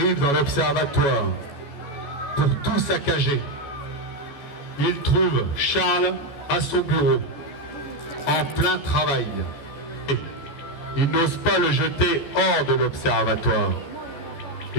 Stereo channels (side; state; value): right; late; 14 ms